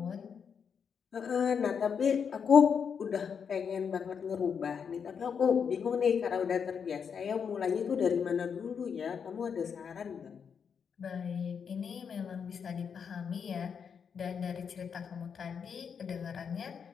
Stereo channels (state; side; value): quieter; right; 6.8 dB